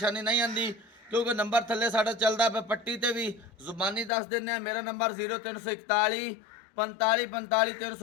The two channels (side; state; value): right; drops out; at 4.1 s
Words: नहीं आती क्योंकि नंबर थले साडा चलदा पे पट्टी ते भी जुबानी दस देने। मेरा नंबर 0341 45 45